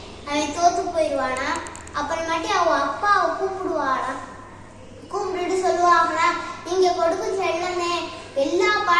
அவன் தோத்து போயிடுவானா. அப்புறமாட்டி அவன் அப்பாவை கூப்பிடுவானா. கூப்பிட்டுட்டு சொல்லுவாங்களா, நீங்க கொடுக்கும் செல்லமே எல்லா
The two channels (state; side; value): identical; both; correlation 1.00